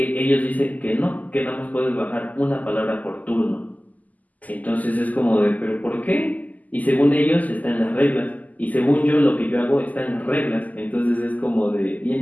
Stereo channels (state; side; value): late; right; 0.079 ms